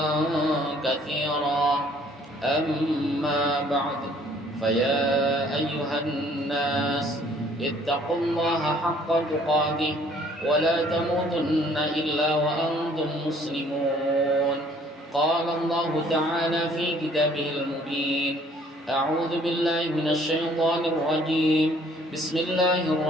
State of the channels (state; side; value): normal; both; correlation 0.59